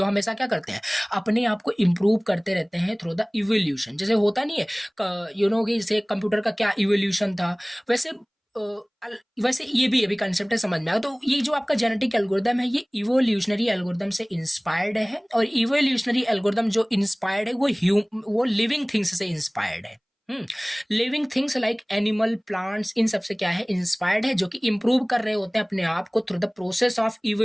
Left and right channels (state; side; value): identical; both; correlation 1.00